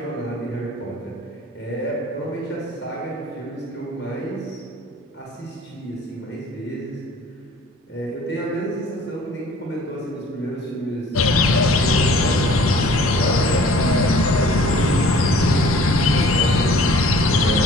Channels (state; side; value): normal; both; correlation 0.51